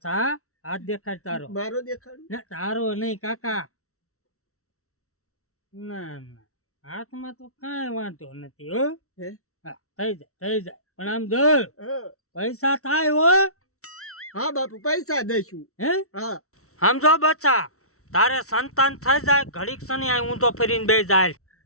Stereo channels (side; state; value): right; late; 0.63 ms